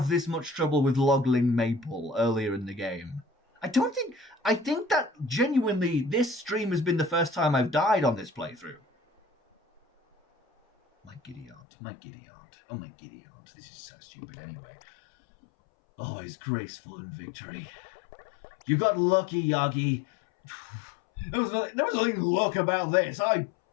this much trouble with Logling Maple earlier in the game. I think that genuinely this stream has been the first time I've died on this playthrough. My giddy aunt. Oh, my giddy aunt. This is so stupid anyway. Always graceful in victory. You got lucky, Yagi. There was nothing luck about this. I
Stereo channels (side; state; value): right; drops out; at 11.6 s